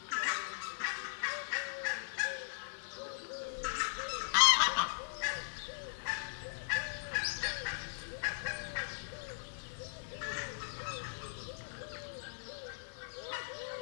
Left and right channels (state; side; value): silent; right; digital silence